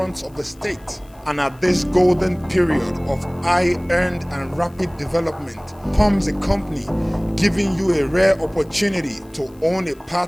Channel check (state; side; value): noise; left; hiss, 30 dB below the sound